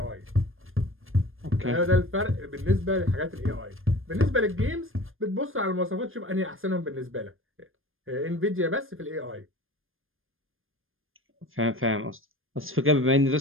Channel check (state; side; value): late; left; 0.60 ms